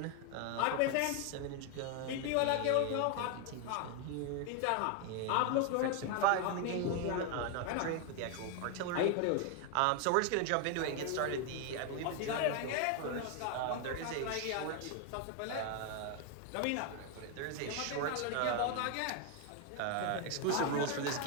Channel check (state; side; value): different; both; correlation 0.01